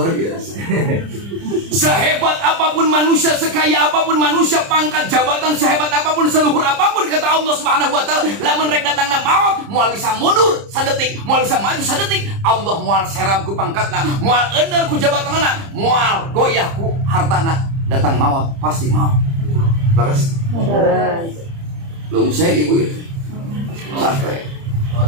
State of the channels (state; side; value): late; left; 30 ms